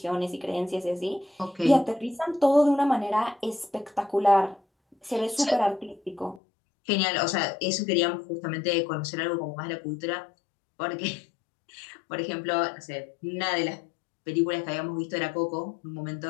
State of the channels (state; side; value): drops out; right; at 6.4 s